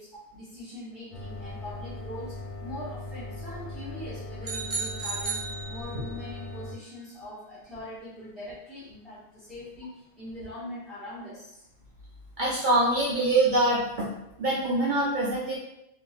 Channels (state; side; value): normal; both; correlation 0.05